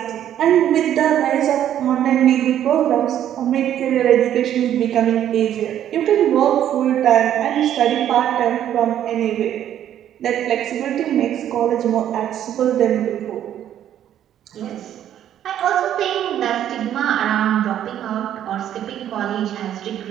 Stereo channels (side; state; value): left; quieter; 10.8 dB